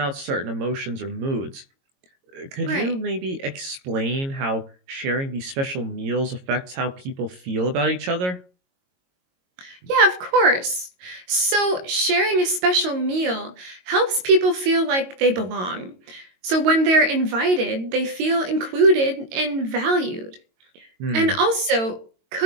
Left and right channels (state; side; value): late; left; 22 ms